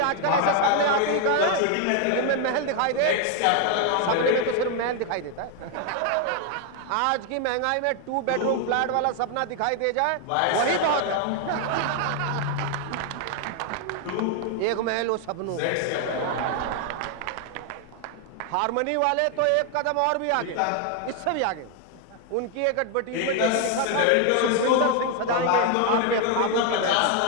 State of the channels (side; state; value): both; different; correlation 0.00